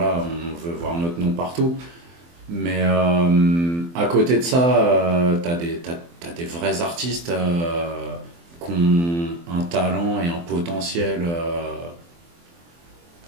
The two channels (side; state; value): left; late; 23 ms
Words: on veut voir notre nom partout. Mais à côté de ça, t'as des vrais artistes qui ont un talent et un potentiel